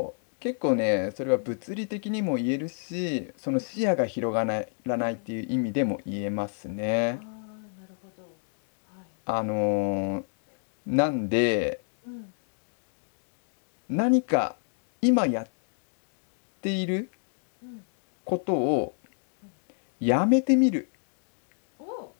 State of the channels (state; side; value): silent; right; 58 dB below the other